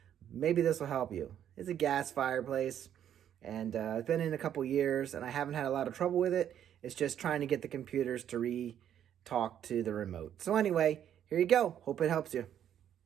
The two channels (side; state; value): left; quieter; 10.0 dB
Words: maybe this will help you. It's a gas fireplace, and it's been in a couple years and I haven't had a lot of trouble with it. It's just trying to get the computers to talk to the remote. So anyway, here you go. Hope it helps you.